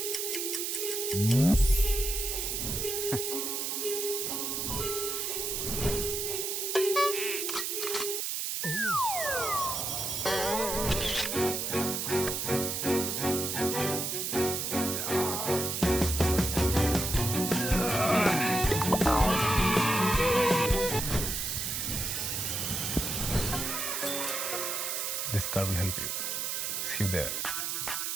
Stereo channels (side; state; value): right; noise; hiss, 1 dB below the sound